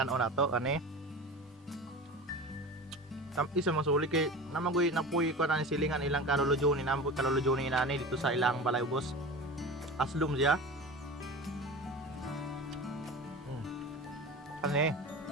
nato ani. Isa masuli kay namagoy napuy ko na ni silingan ilang kalulujo ni nambo kalulujo ni nani dito sa ilang balay ubos. Aslum siya. Ani.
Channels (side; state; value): both; normal; correlation 0.32